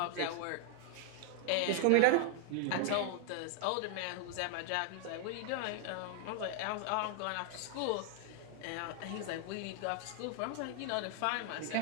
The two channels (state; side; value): different; both; correlation 0.00